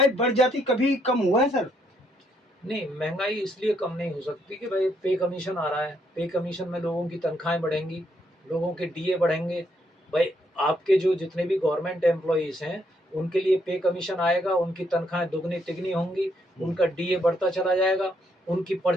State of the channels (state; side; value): normal; both; correlation 0.73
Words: बढ़ जाती कभी कम हुआ है सर? नहीं, महंगाई इसलिए कम नहीं हो सकती कि भाई पे कमीशन आ रहा है, पे कमीशन में लोगों की तनख्वाहें बढ़ेंगी, लोगों के डीए बढ़ेंगे। भाई आपके जो जितने भी गवर्नमेंट एम्प्लॉइज हैं उनके लिए पे कमीशन आएगा, उनकी तनख्वाहें दुगनी तिगनी होंगी, उनका डीए बढ़ता चला जाएगा, उनकी